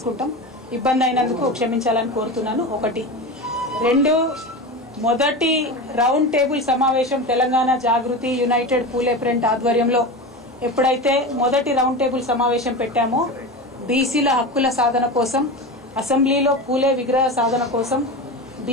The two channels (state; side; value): normal; both; correlation 0.25